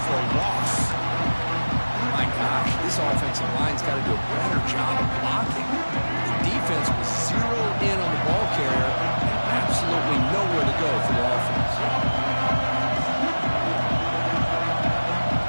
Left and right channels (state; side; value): inverted; both; correlation -1.00